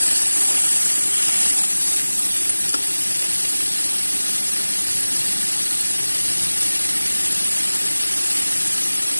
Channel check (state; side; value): inverted; both; correlation -1.00